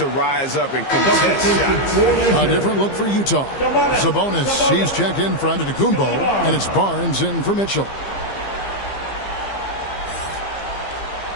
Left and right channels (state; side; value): late; right; 15 ms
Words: rise up and contest shots. A different look for Utah. Sabonis, he's checked in for Antetokounmpo, and it's Barnes in for Mitchell.